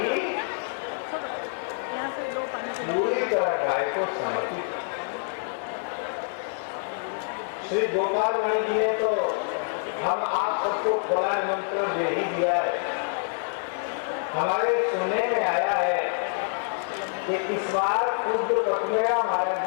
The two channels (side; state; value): right; silent; digital silence